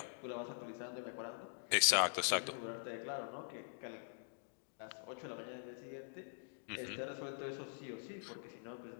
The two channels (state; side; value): silent; right; digital silence